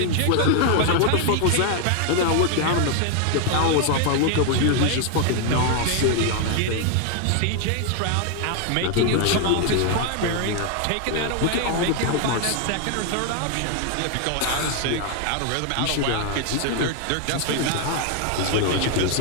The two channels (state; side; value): different; both; correlation 0.01